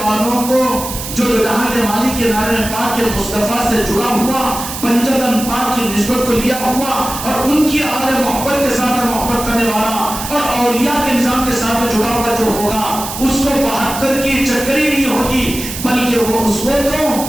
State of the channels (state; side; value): noise; right; hiss, 8 dB below the sound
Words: والوں کو جو جہاں کے مالک کے نعرے پاک کے مصطفیٰ سے جڑا ہوا، پنجتن پاک کی نسبت کو لیا ہوا اور ان کی آل محبت کے ساتھ محبت کرنے والا اور اولیاء کے نظام کے ساتھ جڑا ہوا جو ہوگا، اس کو 72 کی چکری نہیں ہوگی، بلکہ وہ اس کو تو